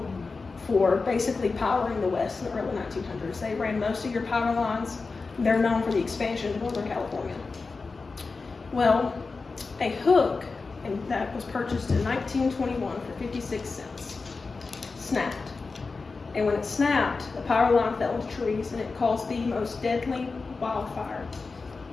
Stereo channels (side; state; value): right; quieter; 4.2 dB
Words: for basically powering the West in the early 1900s. They ran most of your power lines. They're known for the expansion of Northern California. Well, a hook, and that was purchased in 1921 for 56 cents, snapped. And when it snapped, the power line fell into trees and it caused the most deadly wildfire